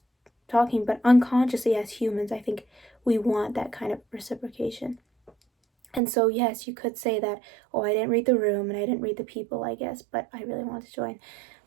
talking, but unconsciously as humans, I think we want that kind of reciprocation. And so, yes, you could say that, oh, I didn't read the room and I didn't read the people, I guess, but I really wanted to join.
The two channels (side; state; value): left; drops out; at 6.0 s